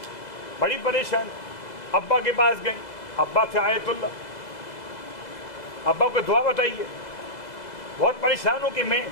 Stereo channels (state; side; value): late; right; 2.0 ms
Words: بڑی پریشان، ابا کے پاس گئیں، ابا تھے آیت اللہ، ابا کو دعا بتائیے. بہت پریشان ہوں کہ میں